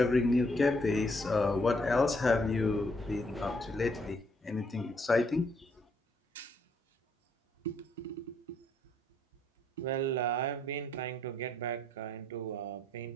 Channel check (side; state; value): both; normal; correlation 0.71